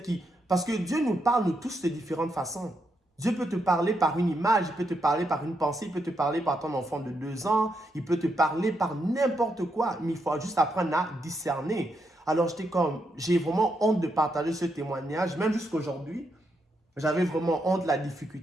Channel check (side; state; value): both; normal; correlation 0.81